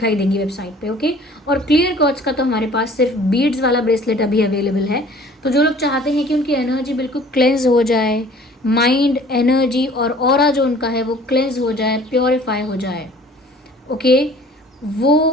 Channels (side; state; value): both; normal; correlation 0.51